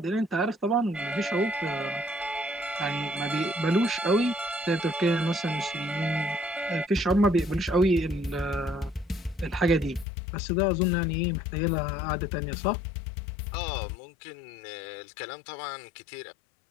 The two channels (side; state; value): right; drops out; at 10.1 s